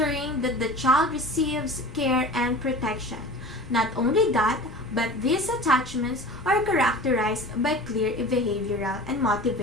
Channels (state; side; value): noise; left; rumble, 17 dB below the sound